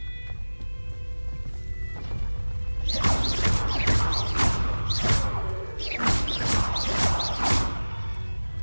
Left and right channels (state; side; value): inverted; both; correlation -1.00